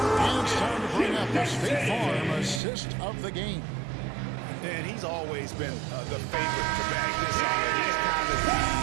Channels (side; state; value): left; drops out; at 2.6 s